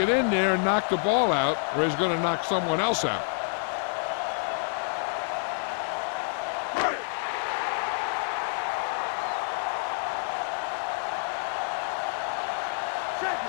in there and knock the ball out or he's going to knock someone else out.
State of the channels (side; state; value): right; silent; 58 dB below the other